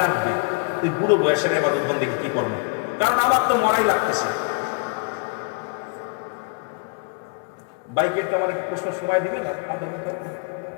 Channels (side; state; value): right; quieter; 32.0 dB